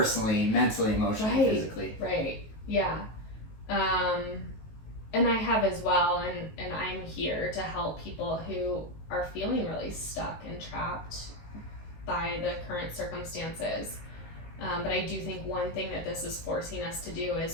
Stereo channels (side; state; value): right; late; 19 ms